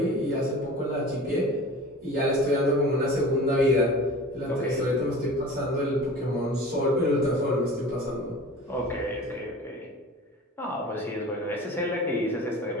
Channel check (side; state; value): both; normal; correlation 0.38